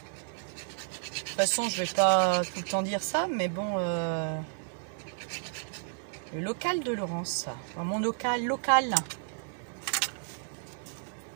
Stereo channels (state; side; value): silent; left; digital silence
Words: De toute façon, je vais pas tout le temps dire ça, mais bon... Le local de Laurence. Enfin, mon local.